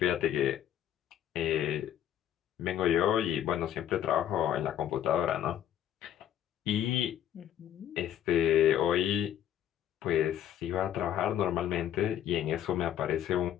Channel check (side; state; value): right; quieter; 10.7 dB